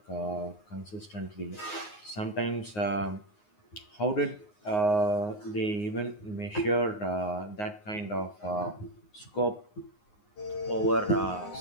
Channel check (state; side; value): late; right; 9.6 ms